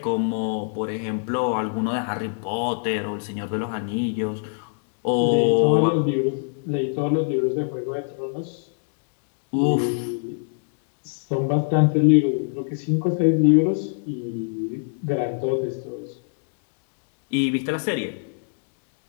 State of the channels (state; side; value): silent; right; digital silence